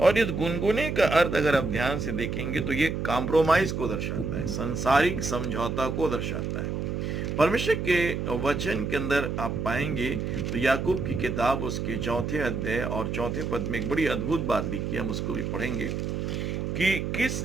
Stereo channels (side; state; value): right; noise; hum, 2 dB below the sound